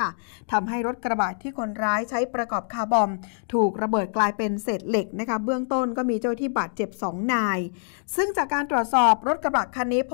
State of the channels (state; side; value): silent; right; digital silence